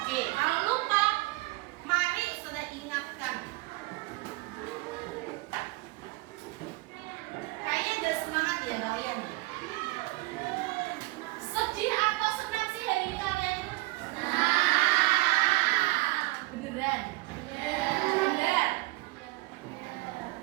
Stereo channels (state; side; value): quieter; left; 21.8 dB